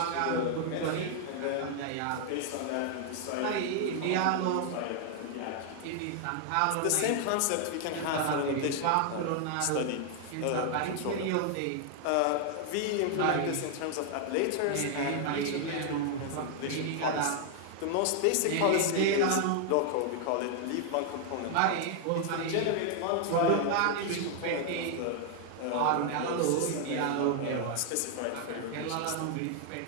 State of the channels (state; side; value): different; both; correlation 0.00